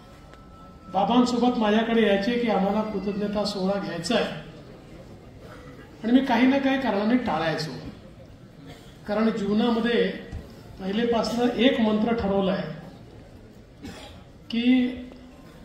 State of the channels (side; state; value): both; identical; correlation 1.00